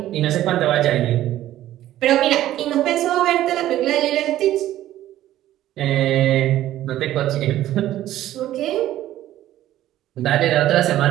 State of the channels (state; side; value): quieter; left; 13.5 dB